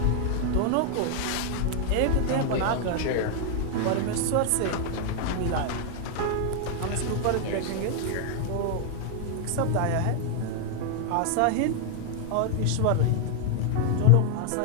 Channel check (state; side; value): different; both; correlation 0.00